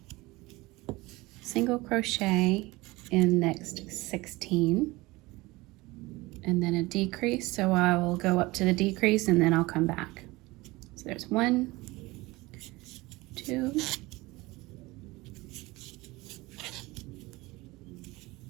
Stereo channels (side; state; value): left; quieter; 21.5 dB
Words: single crochet in next 16 and then a decrease. So I will go up to the decrease and then I'll come back. So there's 1, 2,